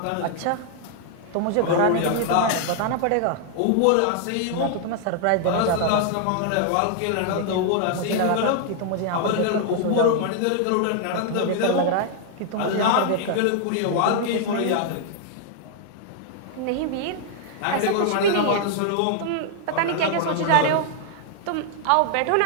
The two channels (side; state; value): both; different; correlation 0.00